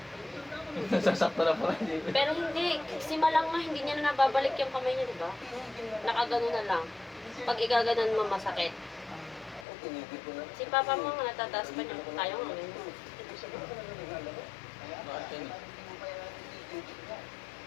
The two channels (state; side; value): drops out; right; at 9.7 s